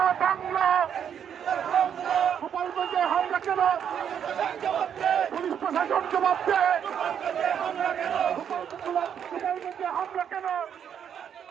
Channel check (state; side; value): quieter; left; 8.5 dB